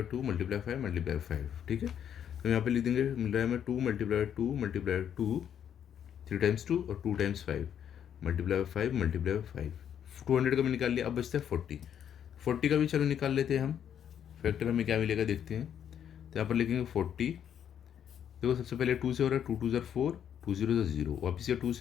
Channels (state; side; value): quieter; right; 9.1 dB